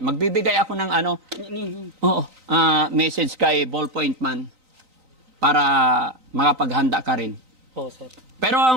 Magbibigay ako ng message kay Ballpoint Man para makapaghanda ka rin. Oo sir. Pero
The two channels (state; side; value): late; left; 3.9 ms